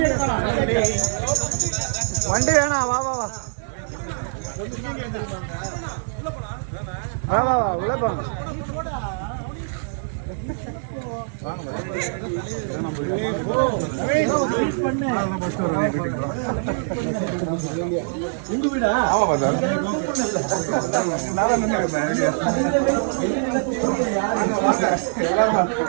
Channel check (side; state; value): left; silent; digital silence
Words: வேணாம். வா வா வா வா வா வா உள்ள போங்க. உங்க வீடா? ஆமா சார்.